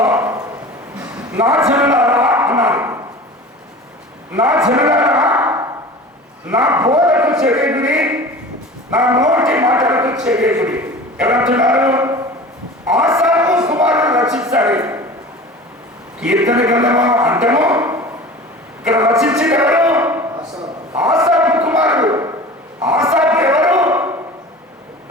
నా జనులారా అన్నారు. నా జనులారా నా బోధకు చెవిగుడి, నా నోటి మాటలకు చెవిగుడి. ఎవరంటున్నారు? ఆసాపు కుమారుడు రచించాడు. కీర్తన గ్రంథము అంటేమో ఇక్కడ రచించింది ఎవరు? ఆసాపు కుమారుడు. ఆసాపు ఎవరు?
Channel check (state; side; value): normal; both; correlation 0.37